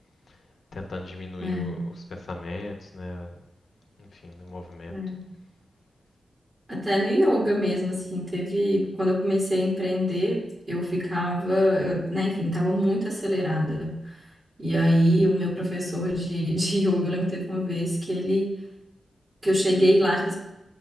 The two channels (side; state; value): both; normal; correlation 0.87